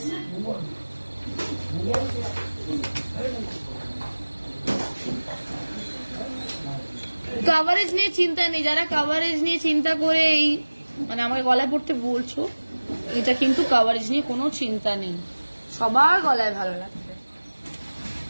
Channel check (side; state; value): both; inverted; correlation -1.00